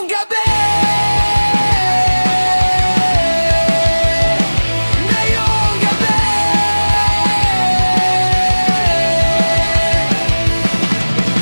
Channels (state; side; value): inverted; both; correlation -1.00